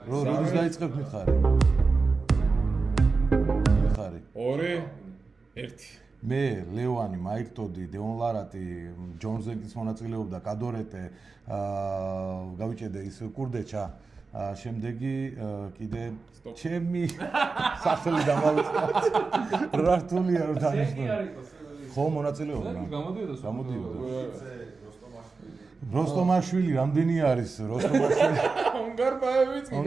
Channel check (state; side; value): quieter; left; 4.2 dB